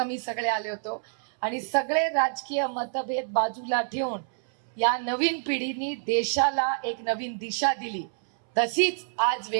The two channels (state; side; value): silent; left; 60 dB below the other